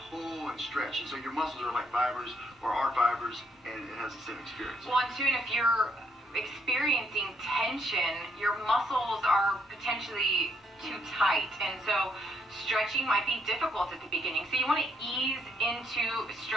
pull and stretch. And so your muscles are like fibers or are fibers, and it has the same experience. Well, and soon if you're experiencing tension, your muscles are potentially too tight, and so stretching might be difficult at the beginning. So you want to ease into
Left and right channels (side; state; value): both; normal; correlation 0.73